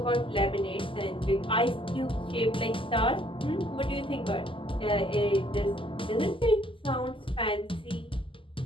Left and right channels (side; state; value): right; late; 0.25 ms